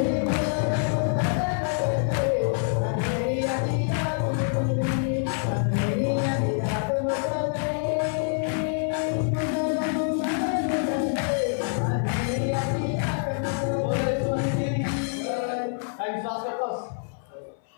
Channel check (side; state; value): right; silent; 60 dB below the other